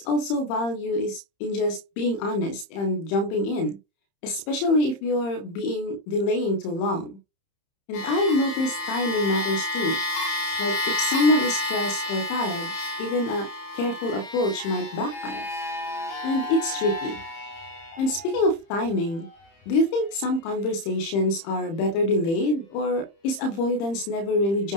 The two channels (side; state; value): right; late; 30 ms